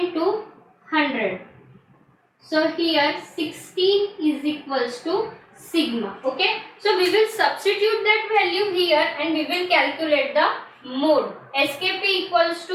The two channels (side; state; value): both; identical; correlation 1.00